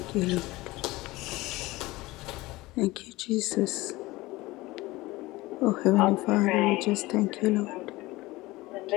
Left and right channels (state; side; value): quieter; right; 19.9 dB